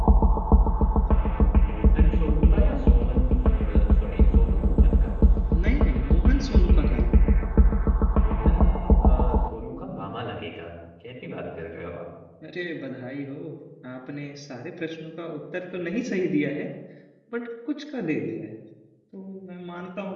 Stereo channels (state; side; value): identical; both; correlation 1.00